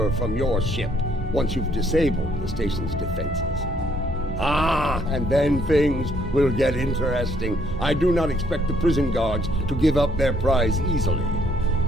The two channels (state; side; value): normal; both; correlation 0.68